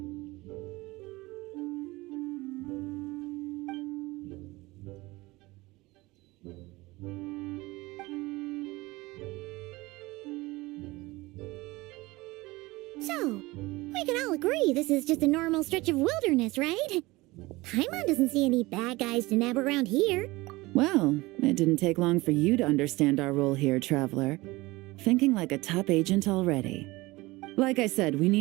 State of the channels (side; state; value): left; quieter; 21.2 dB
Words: So, we can all agree this is just a normal stretch of wilderness, right? Paimon doesn't see any bad guys to nab around here. Well, it didn't take long for you to understand our role here, Traveler. Thinking like a top agent already. Like I said, we